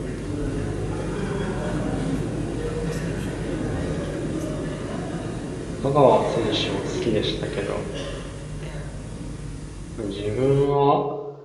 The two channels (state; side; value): identical; both; correlation 1.00